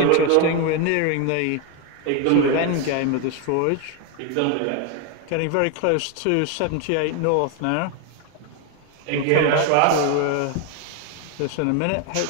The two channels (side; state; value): both; different; correlation 0.01